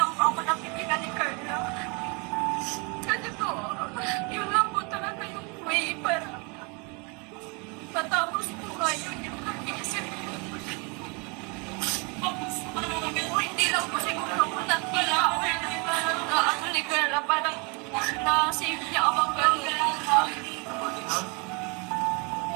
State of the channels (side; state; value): left; quieter; 31.8 dB